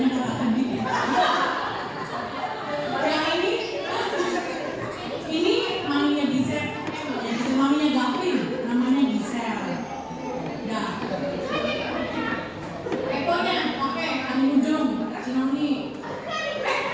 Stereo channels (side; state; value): both; identical; correlation 1.00